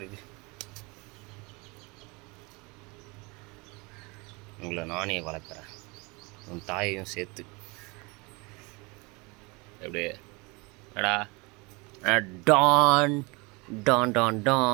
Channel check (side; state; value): left; quieter; 27.2 dB